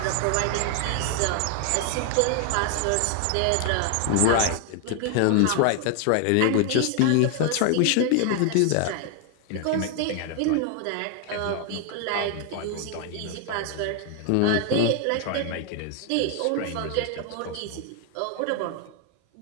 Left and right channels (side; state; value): both; different; correlation 0.00